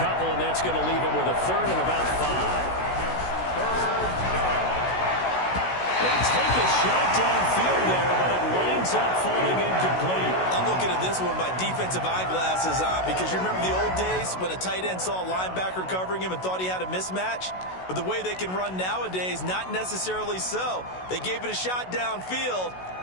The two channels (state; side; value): late; right; 16 ms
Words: couple, and that's going to leave him with a 3rd and about 5. They take a shot downfield there, but it winds up falling incomplete. I'm looking at this with my defensive eyeglasses on because you remember the old days when a tight end saw a linebacker covering him and thought he had a mismatch? But the way they can run nowadays, not necessarily so. They gave it a shot downfield.